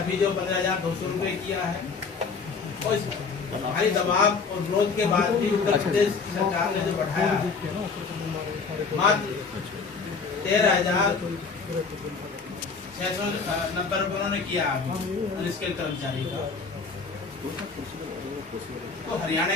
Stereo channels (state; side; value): quieter; right; 4.9 dB